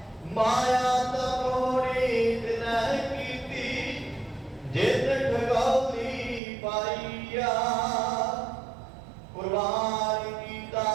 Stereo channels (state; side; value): drops out; left; at 6.4 s